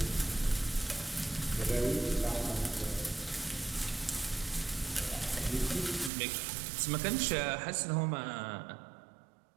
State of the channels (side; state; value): left; drops out; at 6.1 s